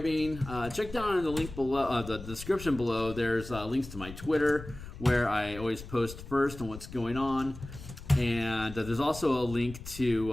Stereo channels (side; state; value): left; noise; rumble, 13 dB below the sound